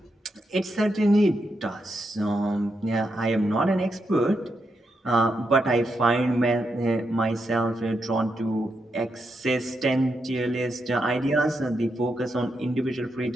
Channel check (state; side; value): normal; both; correlation 0.83